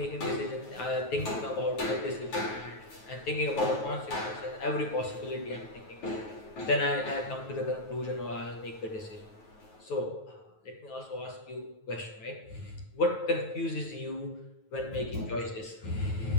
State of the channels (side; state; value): right; late; 9.3 ms